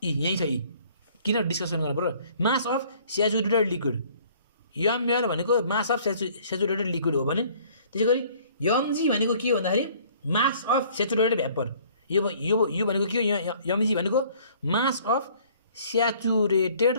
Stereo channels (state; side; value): inverted; both; correlation -0.56